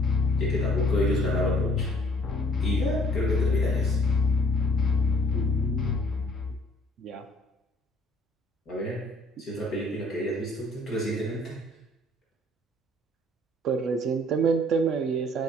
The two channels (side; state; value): both; normal; correlation 0.59